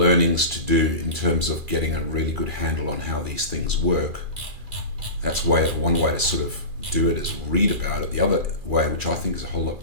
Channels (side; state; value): left; late; 2.4 ms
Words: to do in terms of getting a really good handle on how these things work. That's one way to sort of do it is read about it. The other way, which I think is a whole